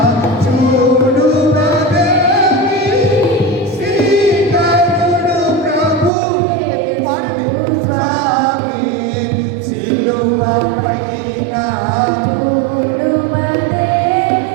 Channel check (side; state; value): left; drops out; at 6.1 s